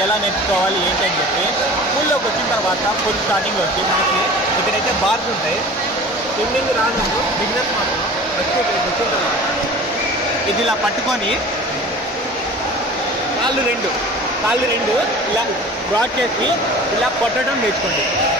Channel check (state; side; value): normal; both; correlation 0.41